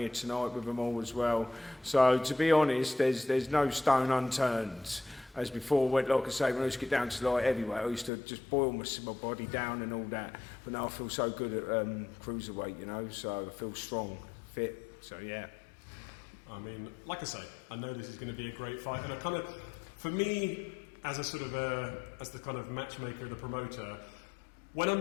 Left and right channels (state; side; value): drops out; right; at 8.1 s